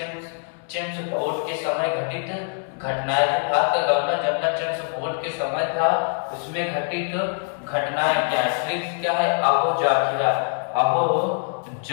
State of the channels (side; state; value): right; silent; 61 dB below the other